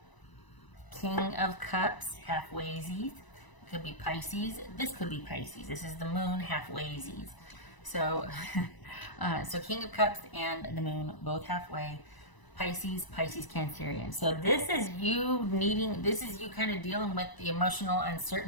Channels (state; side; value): late; right; 1.0 ms